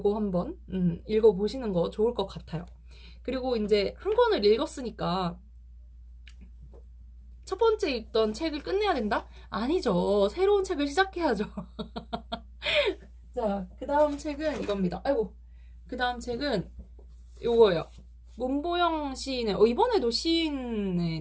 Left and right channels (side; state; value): both; identical; correlation 1.00